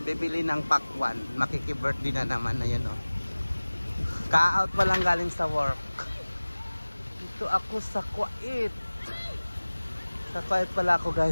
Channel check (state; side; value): inverted; both; correlation -1.00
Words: bibili ng pakwan. Makiki-birthday na naman, ayun oh. Ka-out pa lang galing sa work. Dito ako sa Kuwait. Sa Kuwait pala ako